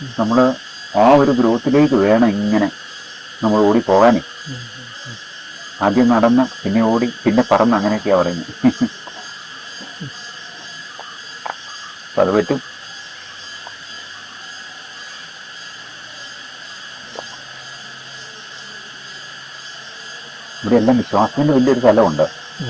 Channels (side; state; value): both; identical; correlation 1.00